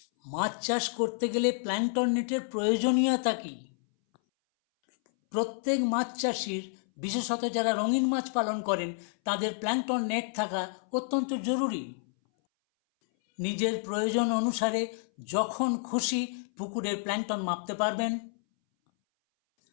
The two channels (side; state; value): right; silent; 58 dB below the other